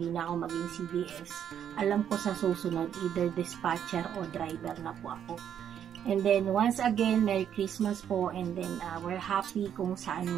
na ako maging CDS. Alam ko sa susunod either dispatcher o driver na po ako. And then once again, Merry Christmas po, and then we're happy kung saan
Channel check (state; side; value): quieter; left; 9.2 dB